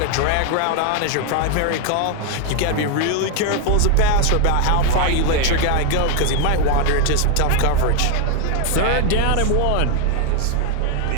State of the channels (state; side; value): different; both; correlation 0.01